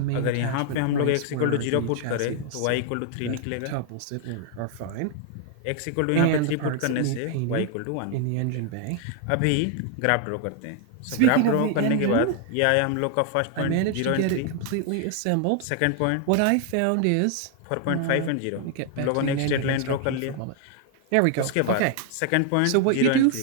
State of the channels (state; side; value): different; both; correlation 0.00